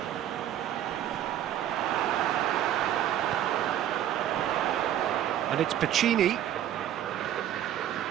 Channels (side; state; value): left; quieter; 11.3 dB